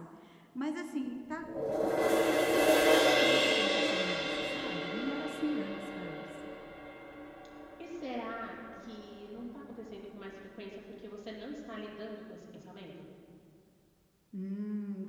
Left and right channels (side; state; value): both; identical; correlation 1.00